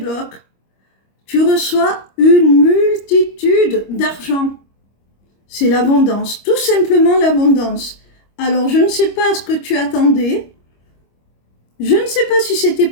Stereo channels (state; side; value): late; right; 25 ms